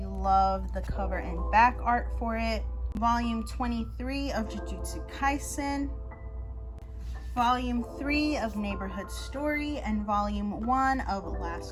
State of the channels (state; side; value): identical; both; correlation 1.00